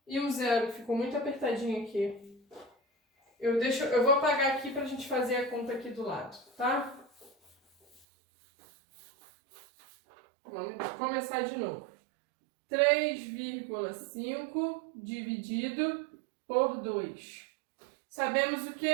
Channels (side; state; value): left; drops out; at 8.1 s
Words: e um zero, ficou muito apertadinho aqui. Eu vou apagar aqui para a gente fazer a conta aqui do lado, tá? Vamos começar de novo. 3,5 dividido por 2. Sabemos o